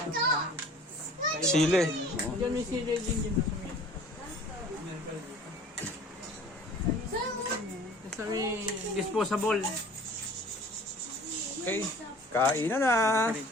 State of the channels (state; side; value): normal; both; correlation 0.47